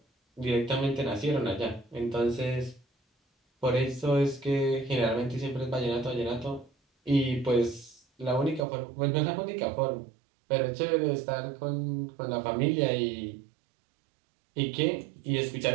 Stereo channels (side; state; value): left; drops out; at 8.7 s